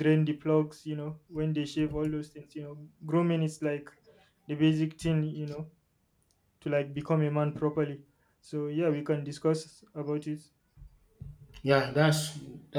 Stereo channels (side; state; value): both; identical; correlation 1.00